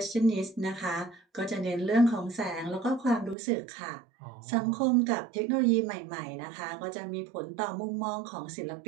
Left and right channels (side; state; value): left; drops out; at 3.4 s